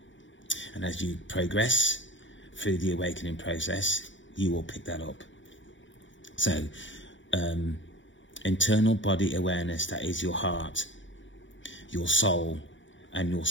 And as you progress through the awakening process, you will pick that up. So internal body awareness, that is your heart, your soul, and your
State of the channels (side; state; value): right; late; 0.55 ms